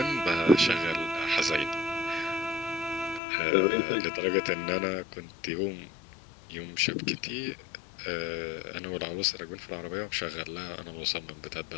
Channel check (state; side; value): drops out; right; at 3.2 s